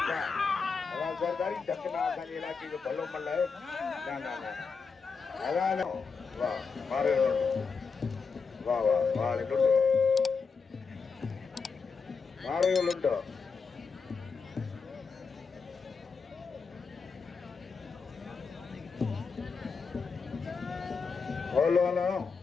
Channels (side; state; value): right; quieter; 5.2 dB